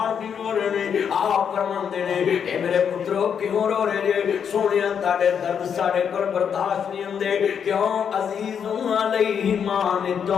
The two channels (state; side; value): quieter; right; 7.6 dB